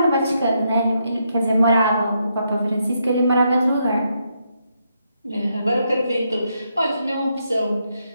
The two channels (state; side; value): inverted; both; correlation -0.79